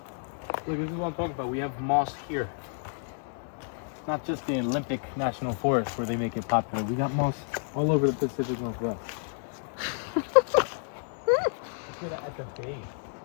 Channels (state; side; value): silent; right; digital silence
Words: Look, this is what I'm talking about. We have moss here. Not just the Olympic National Forest where they make it popular. We got moss all over the Pacific Northwest. Look at that at the base.